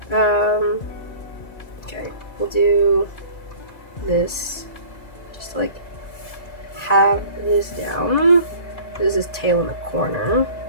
Okay, we'll do this. Just to, like, have this down. This is tail in the corner.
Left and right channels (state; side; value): late; right; 2.1 ms